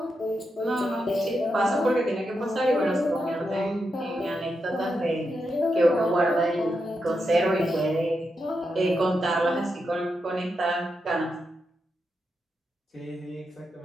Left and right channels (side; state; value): both; normal; correlation 0.85